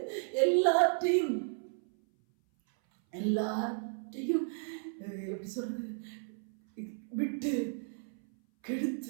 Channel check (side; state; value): left; silent; 55 dB below the other